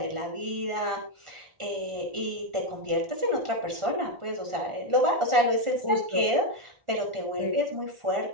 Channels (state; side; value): late; left; 1.4 ms